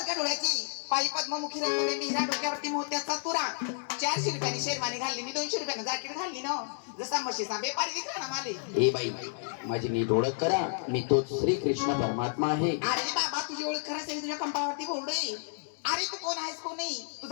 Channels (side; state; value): right; silent; digital silence